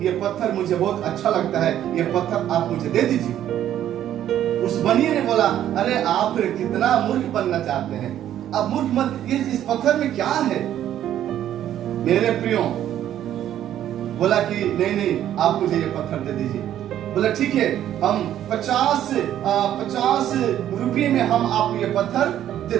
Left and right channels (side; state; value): left; quieter; 11.4 dB